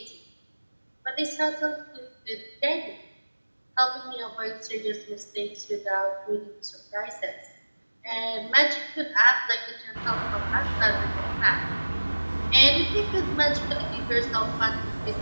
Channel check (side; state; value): both; inverted; correlation -1.00